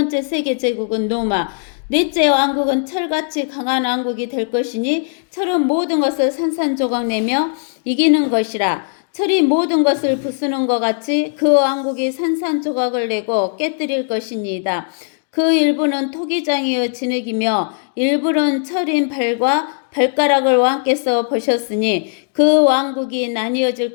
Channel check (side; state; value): right; silent; digital silence